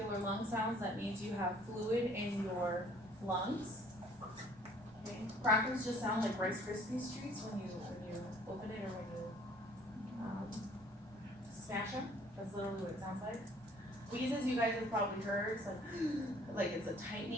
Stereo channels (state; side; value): normal; both; correlation 0.57